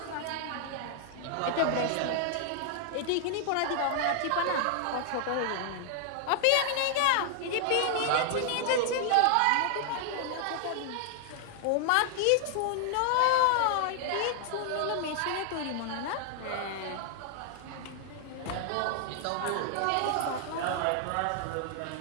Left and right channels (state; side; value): different; both; correlation 0.00